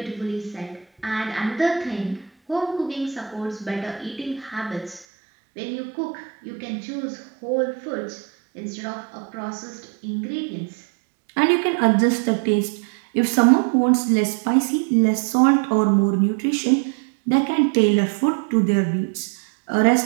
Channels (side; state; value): left; drops out; at 5.1 s